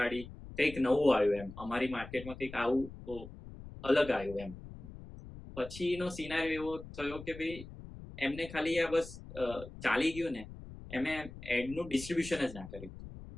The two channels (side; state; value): left; noise; rumble, 14 dB below the sound